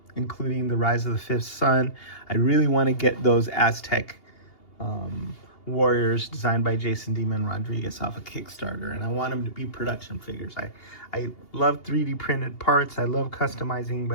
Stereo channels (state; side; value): late; right; 2.8 ms